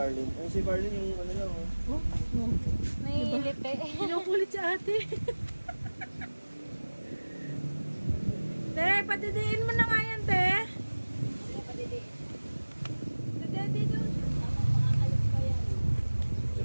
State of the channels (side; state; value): both; inverted; correlation -1.00